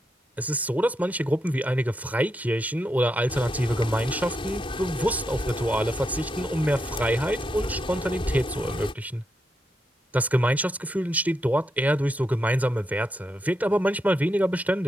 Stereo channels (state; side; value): normal; both; correlation 0.83